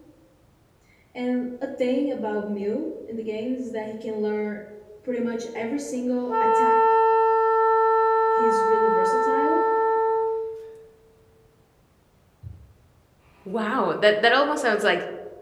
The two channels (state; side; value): identical; both; correlation 1.00